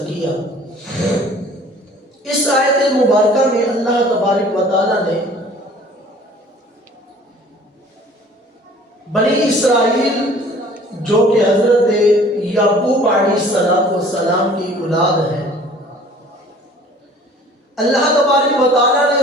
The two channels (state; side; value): normal; both; correlation 0.50